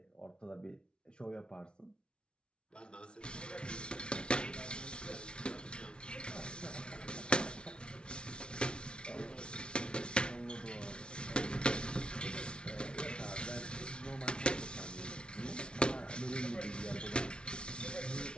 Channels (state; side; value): late; right; 0.056 ms